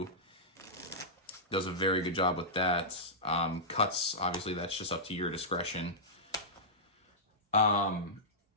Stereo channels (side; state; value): both; normal; correlation -0.15